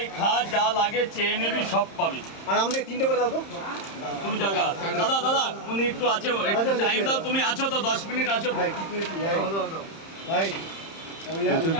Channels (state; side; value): late; right; 30 ms